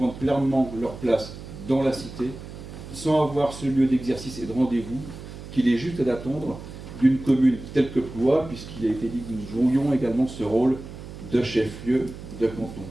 pleinement leur place dans la cité sans avoir ce lieu d'exercice et de rendez-vous qu'il est juste à attendre d'une commune telle que Ploie, puisqu'il a été dit que nous jouions également ce rôle de chef-lieu de canton.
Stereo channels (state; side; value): noise; right; hum, 13 dB below the sound